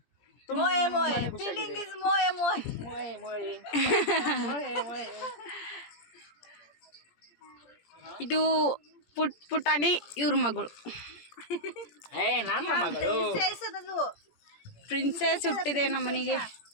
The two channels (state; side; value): late; right; 17 ms